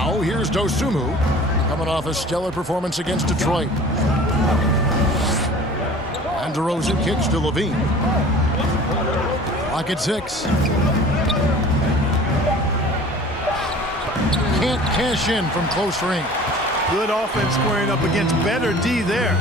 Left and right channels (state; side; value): normal; both; correlation 0.45